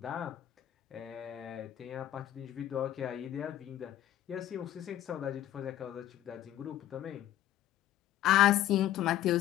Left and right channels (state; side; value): quieter; right; 12.7 dB